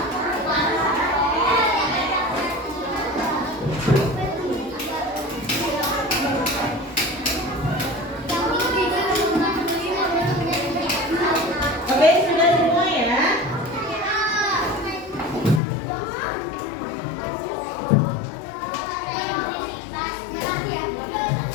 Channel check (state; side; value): drops out; right; at 15.6 s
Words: Oke, sudah semua ya.